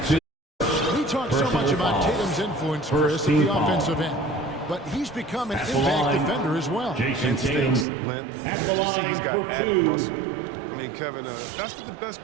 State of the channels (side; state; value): left; drops out; at 7.9 s